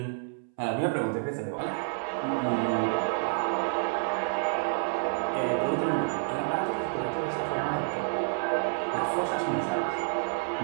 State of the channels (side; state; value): left; silent; 59 dB below the other